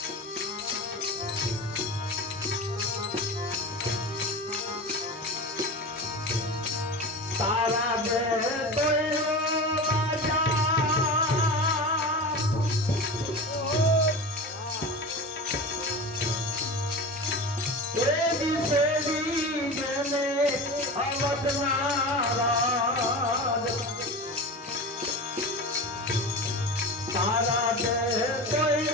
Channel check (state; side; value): normal; both; correlation 0.29